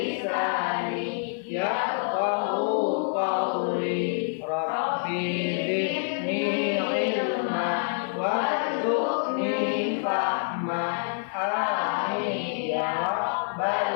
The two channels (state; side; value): silent; right; digital silence